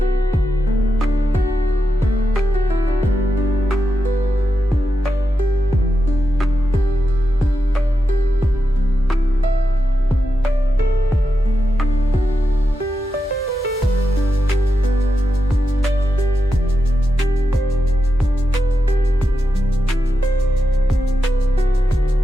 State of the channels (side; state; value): both; normal; correlation 0.88